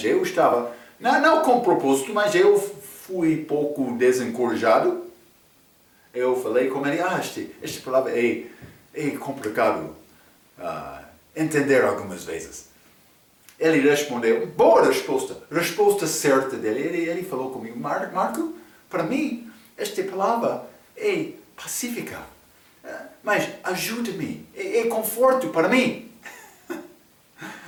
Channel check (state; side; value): identical; both; correlation 1.00